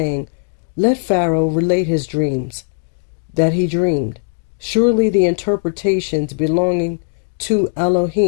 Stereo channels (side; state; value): right; silent; digital silence